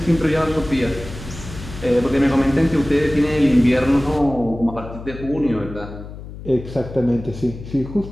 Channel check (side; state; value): left; noise; hum, 13 dB below the sound